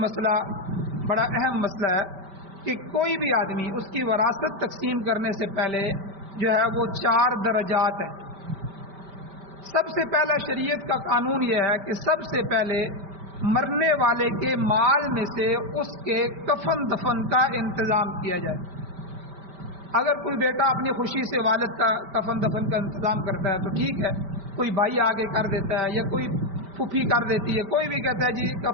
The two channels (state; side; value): late; left; 5.1 ms